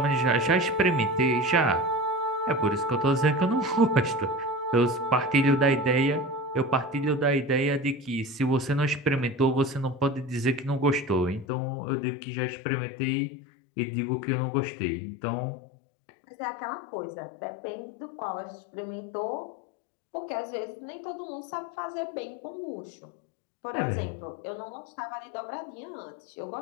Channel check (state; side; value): drops out; right; at 11.5 s